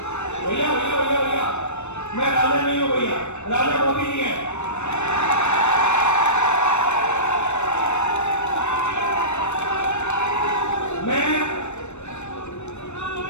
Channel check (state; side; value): late; right; 0.82 ms